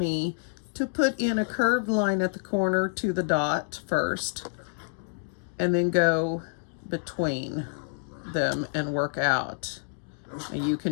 to put in a curved line at the corner to the dot first, and then go between them and work out. And you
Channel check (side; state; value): right; silent; digital silence